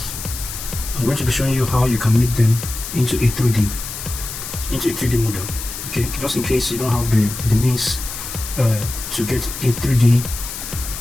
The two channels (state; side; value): noise; left; hiss, 8 dB below the sound